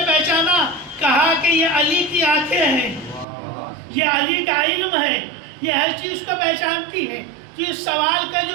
پہچانا؟ کہا کہ یہ علی کی آنکھیں ہیں، یہ علی کا علم ہے، یہ ہر چیز کو پہچانتی ہے. جس سوال کا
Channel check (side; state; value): left; drops out; at 3.2 s